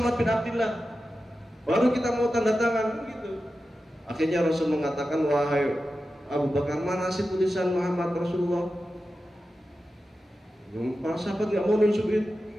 bin Abdullah, baru kita mau tanda tangan gitu. Akhirnya Rasul mengatakan, wahai Abu Bakar, mana sih tulisan Muhammad Rasulullah? Para sahabat nggak mau nunjukin,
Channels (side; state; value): both; normal; correlation 0.92